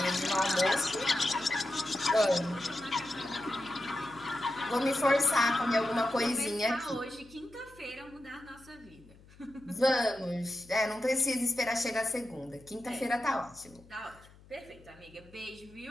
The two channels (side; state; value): left; noise; hum, 24 dB below the sound